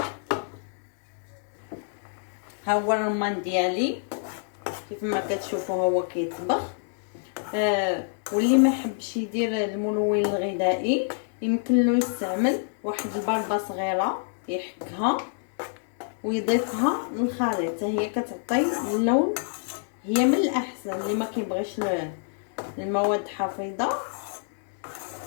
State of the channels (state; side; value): silent; right; digital silence